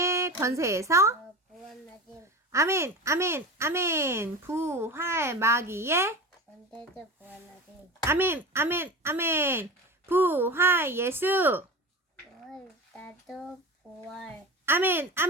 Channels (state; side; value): normal; both; correlation 0.29